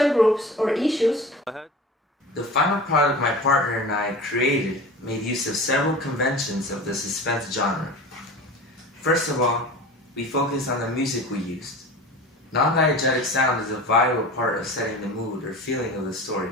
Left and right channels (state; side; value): normal; both; correlation 0.35